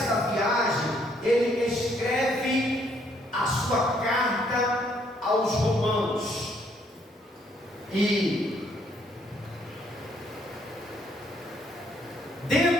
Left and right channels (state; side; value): normal; both; correlation 0.68